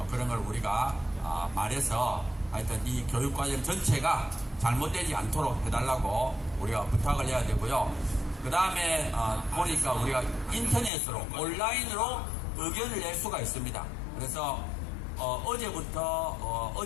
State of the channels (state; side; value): drops out; right; at 10.9 s